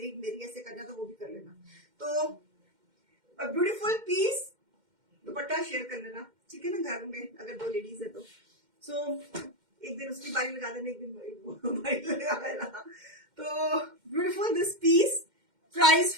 एक मेरी, ऐसे करना तो वो भी कर लेना. तो ब्यूटीफुल पीस. दुपट्टा शेयर कर लेना, ठीक है ना, घर में अगर 2 लेडीज है तो. सो एक दिन उसकी बारी लगा देना, एक दिन बारी लगा देना. तो beautiful this piece. Price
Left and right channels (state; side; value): late; left; 2.1 ms